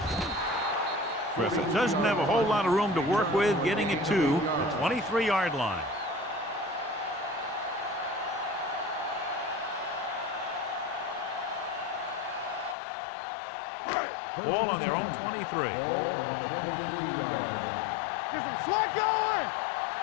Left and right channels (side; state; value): right; drops out; at 12.8 s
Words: Griffith doesn't have a whole lot of room to work with, getting it to the 23-yard line. Ball on their own 23. Ball on the 23-yard line. Get some slack going.